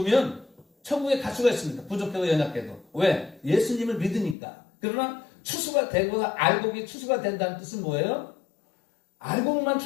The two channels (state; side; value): drops out; right; at 4.4 s